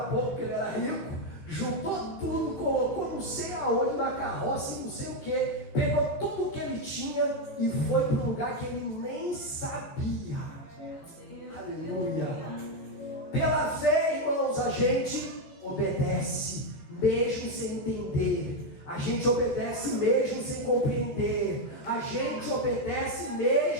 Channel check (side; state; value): right; late; 14 ms